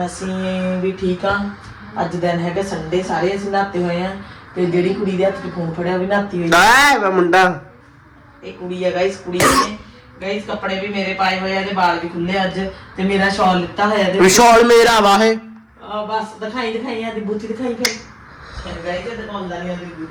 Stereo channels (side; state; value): both; identical; correlation 1.00